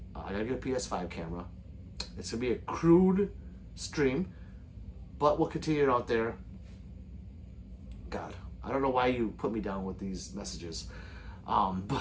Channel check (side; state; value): both; identical; correlation 1.00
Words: I gotta get a PS5 camera. It's gonna be a crude stream, but we'll continue it out there. God, I don't know why you put me down with these messages,